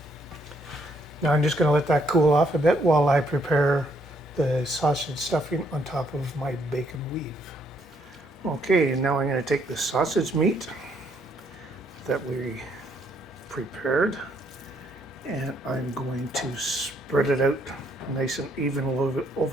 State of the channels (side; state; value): both; normal; correlation 0.71